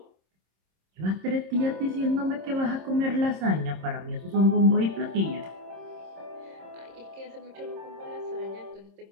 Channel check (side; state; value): left; late; 26 ms